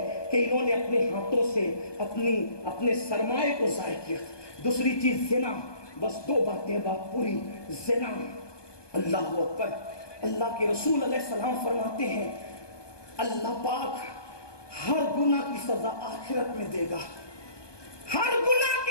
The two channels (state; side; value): late; right; 1.2 ms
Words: کہ انہوں نے اپنے ہاتھوں سے اپنے سرمایے کو ضائع کیا۔ دوسری چیز زنا، بس دو باتیں بات پوری، زنا۔ اللہ اکبر، اللہ کے رسول علیہ السلام فرماتے ہیں اللہ پاک ہر گناہ کی سزا آخرت میں دے گا، ہر گناہ